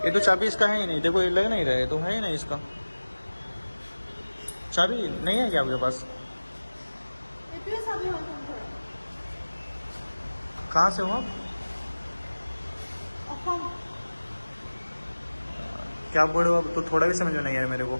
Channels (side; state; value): both; inverted; correlation -1.00